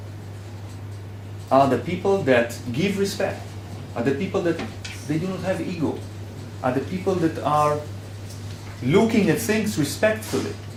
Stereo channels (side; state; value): both; identical; correlation 1.00